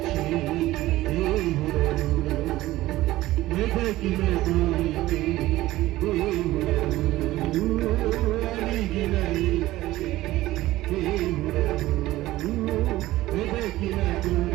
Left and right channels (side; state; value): left; quieter; 16.6 dB